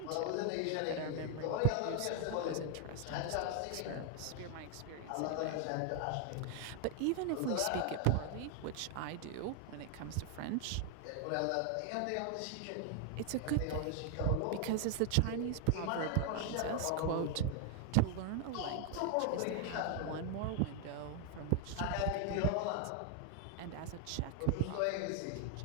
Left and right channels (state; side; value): different; both; correlation 0.00